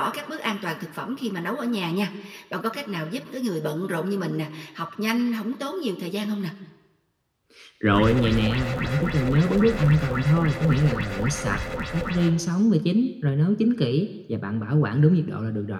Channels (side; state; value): both; identical; correlation 1.00